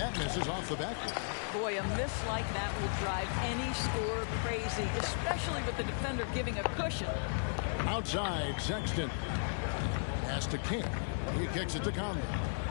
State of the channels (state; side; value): silent; right; digital silence